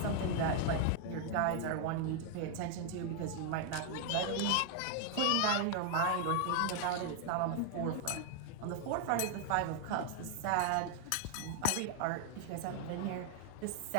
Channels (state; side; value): different; both; correlation 0.00